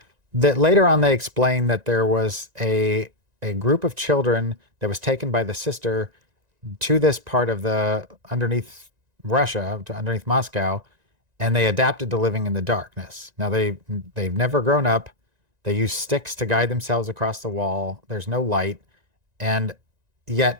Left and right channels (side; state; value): left; late; 1.9 ms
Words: later on they explain that there was a group of children that was taken by the sister to this part of underneath Russia, underneath Moscow, and they adapted to living in the darkness. Now they've never grown up. They use sticks to guide themselves across the wall. There's no light, and